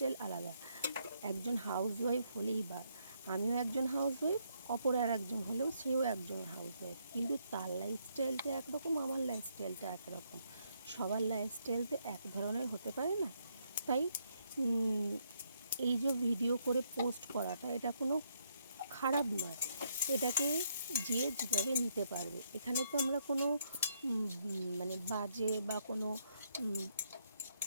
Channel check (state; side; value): inverted; both; correlation -0.75